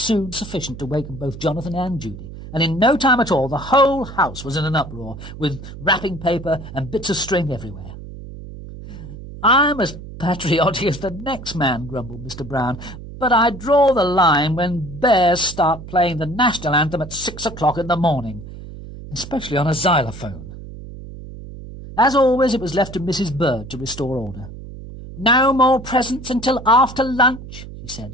sufficient to waken both Jonathan and Judy, and in no time at all the whole house was in an uproar, with wrapping paper and bits of string everywhere. "I'm as patriotic as the next man," grumbled Mr. Brown, "but I draw the line when bears start playing the national anthem at 6 o'clock in the morning, especially on a xylophone." As always, it was left to Mrs. Bird to restore order. "No more presents until after lunch," she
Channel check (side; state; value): right; noise; hum, 13 dB below the sound